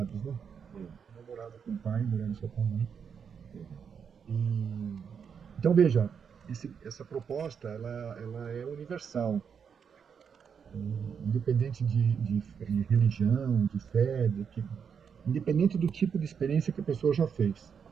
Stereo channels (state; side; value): quieter; left; 6.9 dB